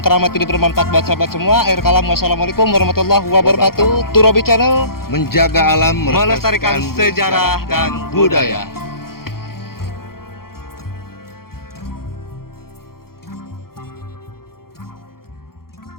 keramat ini bermanfaat buat sahabat semua. Akhir kalam, wassalamualaikum warahmatullahi wabarakatuh. Turobi Channel Menjaga alam, melestarikan sejarah dan budaya.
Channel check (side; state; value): right; late; 0.93 ms